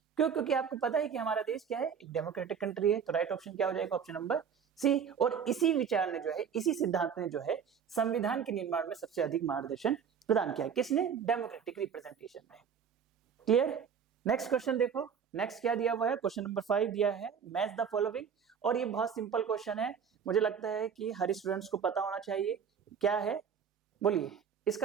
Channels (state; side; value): quieter; left; 7.2 dB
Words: क्यों? क्योंकि आपको पता है कि हमारा देश क्या है, एक डेमोक्रेटिक कंट्री है, तो राइट ऑप्शन क्या हो जाएगा, ऑप्शन नंबर सी। और इसी विचार ने जो है, इसी सिद्धांत ने जो है संविधान के निर्माण में सबसे अधिक मार्गदर्शन प्रदान किया, किसने? डेमोक्रेटिक रिप्रेजेंटेशन में। क्लियर? नेक्स्ट क्वेश्चन देखो, नेक्स्ट क्या दिया हुआ है, क्वेश्चन नंबर 5 दिया है, मैच द फॉलोइंग, और ये बहुत सिंपल क्वेश्चन है, मुझे लगता है कि हर स्टूडेंट्स को पता होना चाहिए। क्या है, बोलिए